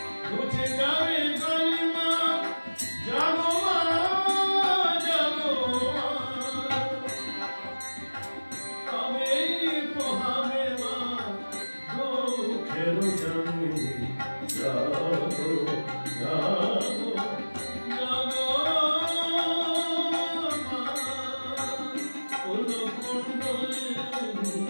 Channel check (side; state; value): both; inverted; correlation -1.00